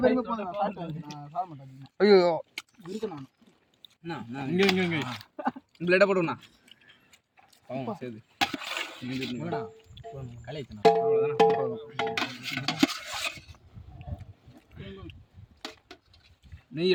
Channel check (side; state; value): both; identical; correlation 1.00